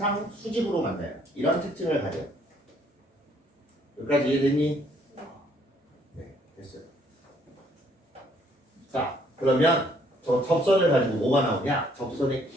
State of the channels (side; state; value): both; normal; correlation 0.65